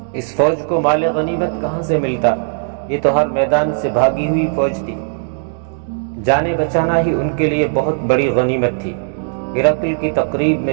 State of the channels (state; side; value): silent; left; digital silence